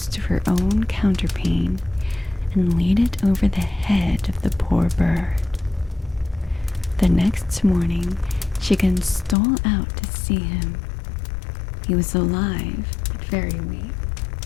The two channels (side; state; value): right; drops out; at 9.3 s